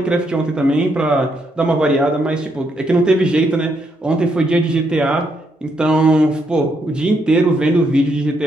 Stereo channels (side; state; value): both; normal; correlation 0.77